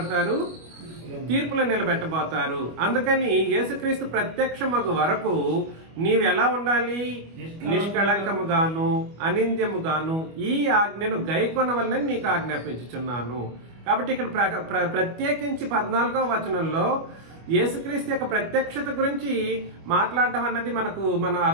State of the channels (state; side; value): late; left; 25 ms